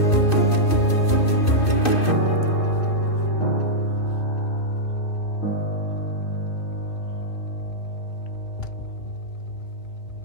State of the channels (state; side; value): late; right; 2.6 ms